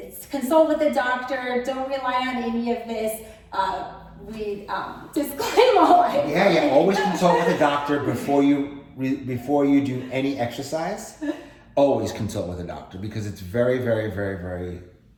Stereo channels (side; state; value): both; identical; correlation 1.00